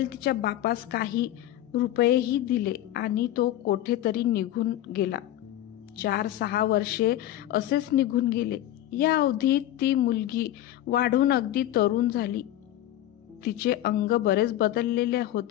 तिच्या बापास काही रुपयेही दिले आणि तो कोठेतरी निघून गेला. 4-6 वर्षे असेच निघून गेले. या अवधीत ती मुलगी वाढून अगदी तरुण झाली. तिचे अंग बरेच बदललेले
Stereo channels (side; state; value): right; quieter; 13.3 dB